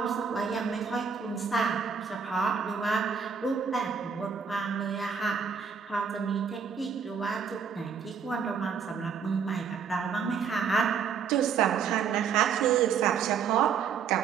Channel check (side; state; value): left; quieter; 6.5 dB